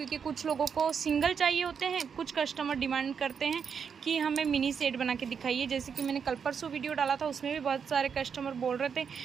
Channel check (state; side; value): quieter; left; 6.7 dB